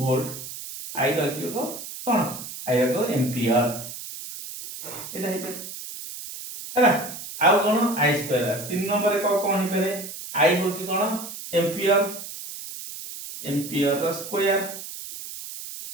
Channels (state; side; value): noise; right; hiss, 10 dB below the sound